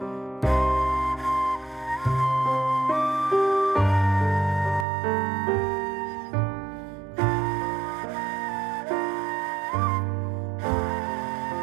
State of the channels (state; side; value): drops out; left; at 4.9 s